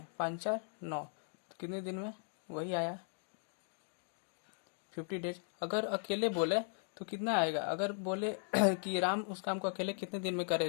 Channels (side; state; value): right; silent; 52 dB below the other